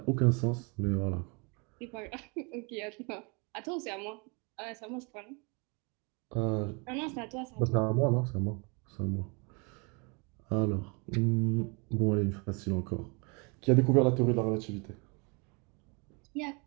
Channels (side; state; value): left; quieter; 32.2 dB